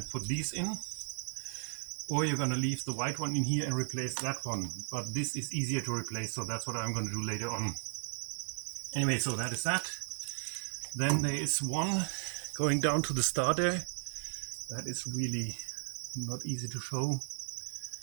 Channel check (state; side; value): silent; left; 54 dB below the other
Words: put these in, or you're going to leave the white one in here and replace that one. But this is easier to replace, so that's what I'm going to do later on. Anyway, so that is that. Then there is one going down to the starter. That is really not easy to show.